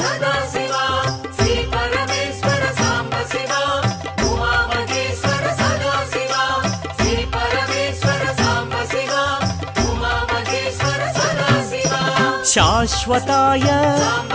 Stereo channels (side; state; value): both; identical; correlation 1.00